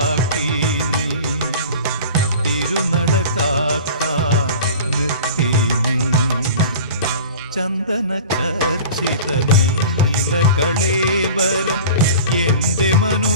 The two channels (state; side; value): inverted; both; correlation -0.38